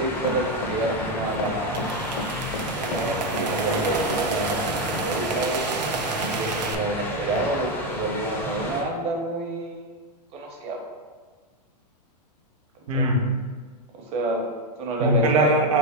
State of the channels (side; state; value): both; normal; correlation 0.08